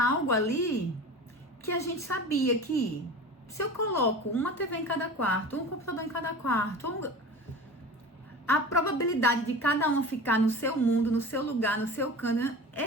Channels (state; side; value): normal; both; correlation 0.35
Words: algo ali que a gente sabia que se eu coloco uma TV em cada quarto, um computador em cada quarto, a probabilidade de cada um ficar no seu mundo, no seu lugar, no seu canto,